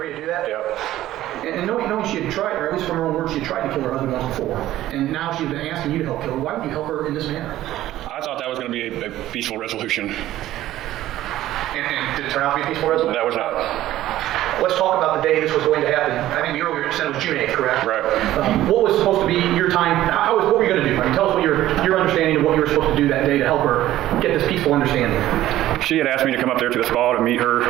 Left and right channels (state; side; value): quieter; left; 14.3 dB